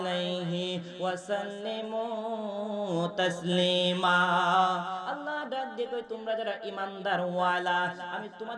ওয়া সাল্লিমু তাসলিমা। আল্লাহ ডাক দিয়ে কই, তোমরা যারা ঈমানদার ওয়ালা, আমি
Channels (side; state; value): both; identical; correlation 1.00